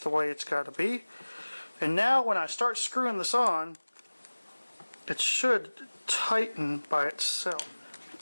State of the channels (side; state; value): both; inverted; correlation -1.00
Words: way it's got to be. And now when I start screwing this on, it should tighten by itself.